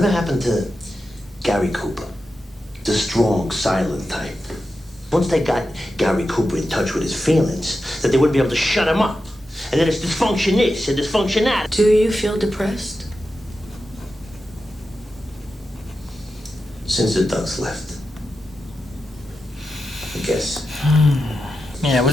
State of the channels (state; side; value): normal; both; correlation 0.90